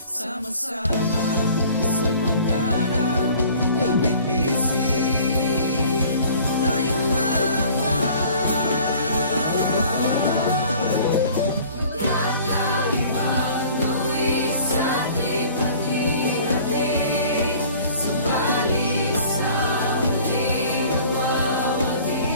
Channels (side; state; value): both; inverted; correlation -0.49